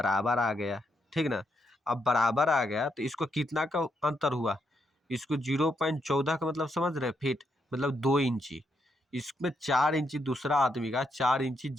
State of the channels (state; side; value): normal; both; correlation 0.79